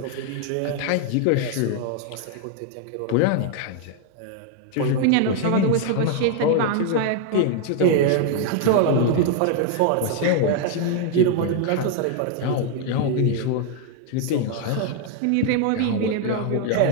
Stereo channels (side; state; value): both; different; correlation 0.00